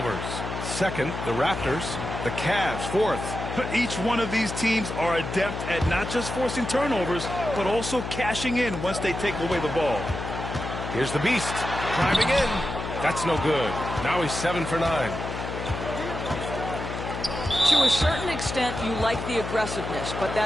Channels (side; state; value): left; noise; hum, 6 dB below the sound